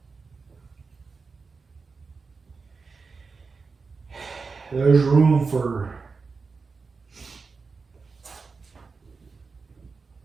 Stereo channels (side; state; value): left; quieter; 4.6 dB